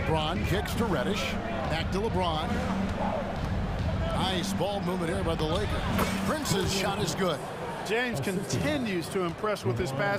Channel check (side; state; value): both; identical; correlation 1.00